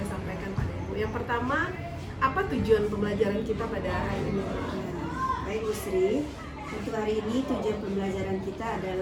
sampaikan pada Ibu. Yang pertama, apa tujuan pembelajaran kita pada hari ini? Baik Bu Sri, untuk hari ini tujuan pembelajaran kita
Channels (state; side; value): identical; both; correlation 1.00